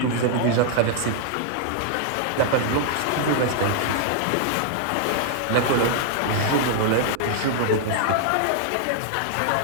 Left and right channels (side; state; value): both; different; correlation -0.01